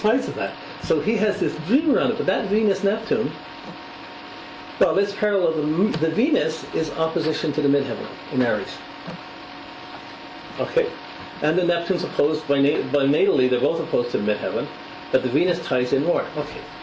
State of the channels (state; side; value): identical; both; correlation 1.00